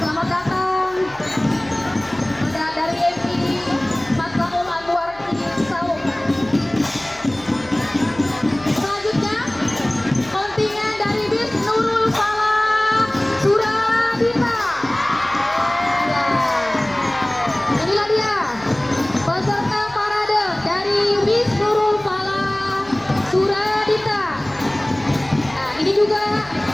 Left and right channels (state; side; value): noise; left; hum, 24 dB below the sound